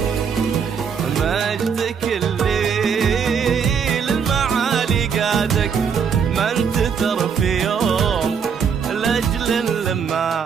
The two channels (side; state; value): left; quieter; 6.7 dB